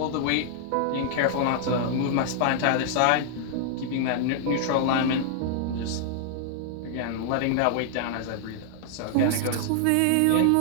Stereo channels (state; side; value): different; both; correlation -0.01